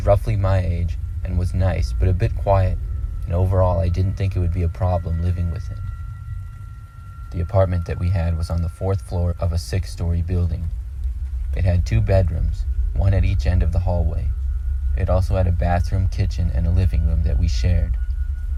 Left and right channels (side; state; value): both; identical; correlation 1.00